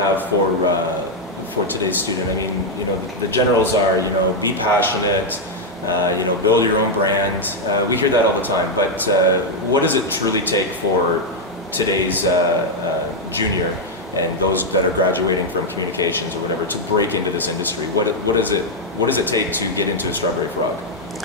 for today's student? I mean, you know, the generals are, you know, be passionate, you know, build your own brand. We hear that all the time, but what does it truly take for today's junior and those that are graduating from communications or whatever to break into this industry? What does it take to get into a Strawberry Frog?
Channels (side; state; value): both; normal; correlation 0.00